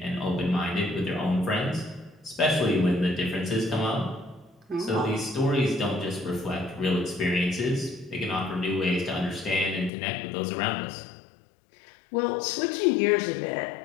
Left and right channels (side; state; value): right; drops out; at 9.9 s